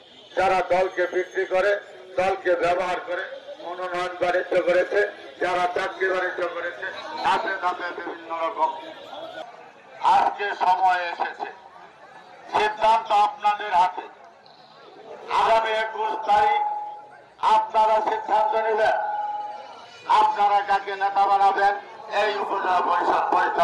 যারা দলকে বিক্রি করে, দলকে ব্যবহার করে মনোনয়ন বাণিজ্য করেছে, যারা চাকরি বাণিজ্য করেছে, ধাপে ধাপে বিভিন্ন রকম। আজকে সময় এসেছে, সিদ্ধান্ত আপনাদের হাতে। আগামী 21 তারিখ আপনারা সিদ্ধান্ত নেবেন, আপনারা কাকে নেতা বানাবেন, এই উপজেলা পরিষদ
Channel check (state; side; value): identical; both; correlation 1.00